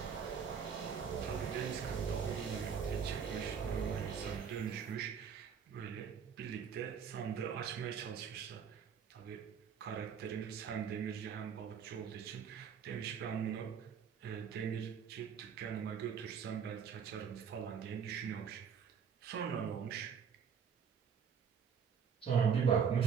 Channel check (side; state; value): left; quieter; 7.0 dB